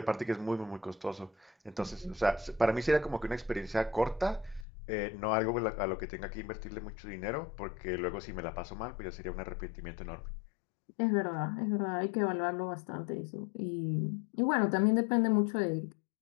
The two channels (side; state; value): right; drops out; at 4.7 s